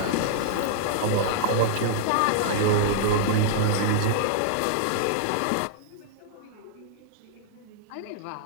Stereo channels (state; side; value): different; both; correlation -0.01